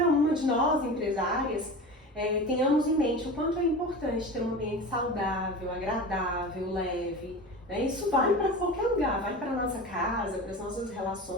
uma de nós, empresárias, tenhamos em mente o quanto é importante ter um ambiente saudável, agradável, leve. Né? Isso vale para qualquer lugar, vale para a nossa casa, para as nossas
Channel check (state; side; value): normal; both; correlation 0.31